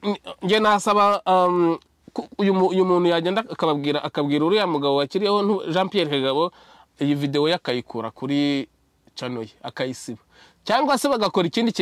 nge nasaba uyu muntu yagenda akabwira uriya mugabo wakiriyeho Jean Pierre Kagabo iyi video yakayikura kuri channel ye akayisiba cyangwa se bagakora ikindi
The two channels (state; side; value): identical; both; correlation 1.00